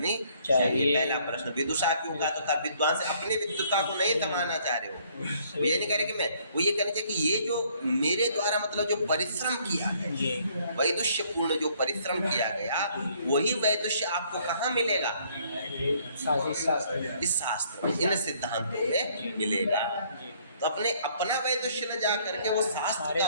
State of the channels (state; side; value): inverted; both; correlation -0.64